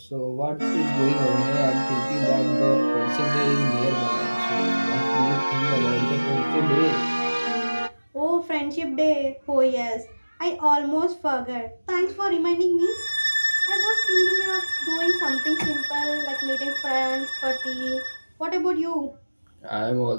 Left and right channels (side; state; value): both; inverted; correlation -1.00